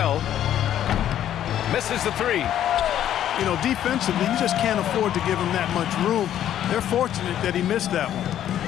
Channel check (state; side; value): quieter; right; 11.1 dB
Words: Misses the three. You know, defensively, you just can't afford to give him that much room. They're fortunate that he missed that one.